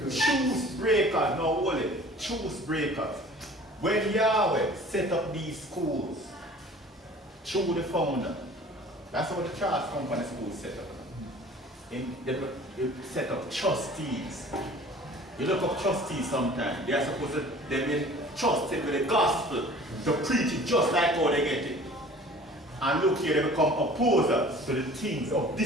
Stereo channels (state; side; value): normal; both; correlation 0.47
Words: Truth breakers. No, holy. Truth breakers. When Yahweh set up these schools, through the founder, that's how the Charles Company School set up. They set up trustees. You look up trustees sometimes, they are supposed to be trusted with the gospel to preach it just like how they get it. And look here, they become opposers to the things of